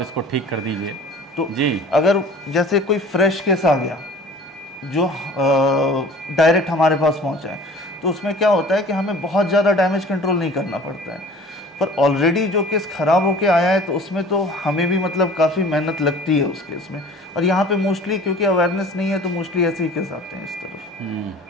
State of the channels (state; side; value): normal; both; correlation 0.46